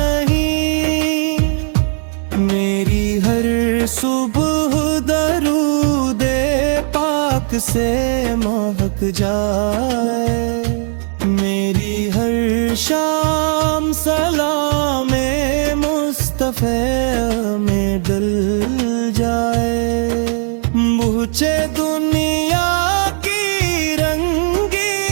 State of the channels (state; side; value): silent; left; 55 dB below the other